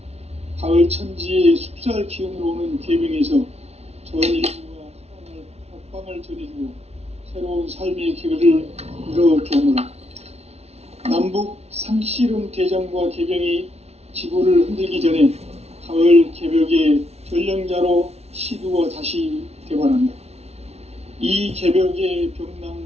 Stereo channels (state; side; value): late; left; 0.31 ms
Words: 가을 천지의 숲살 기운으로 오는 계명에서 전 인류와 사랑을 박방을 전해주고 새로운 삶의 기회를 이뤄주오노라. 남북 상씨름 대전과 개병이 지구를 흔들기 전에 가을 개벽의 전령자로 시두가 다시 되관한다. 이 개벽의